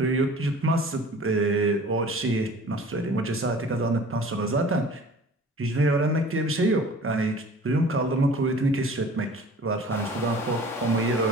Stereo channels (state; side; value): normal; both; correlation 0.45